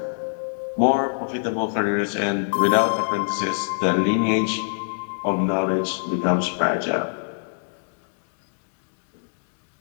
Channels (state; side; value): silent; right; digital silence